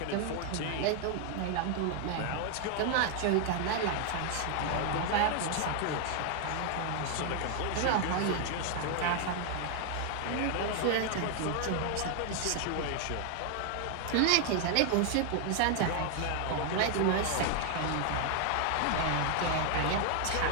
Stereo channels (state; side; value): different; both; correlation 0.00